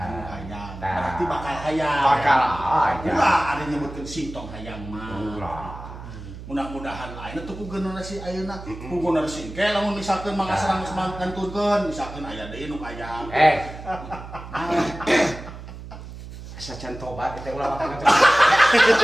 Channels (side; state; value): right; noise; hum, 13 dB below the sound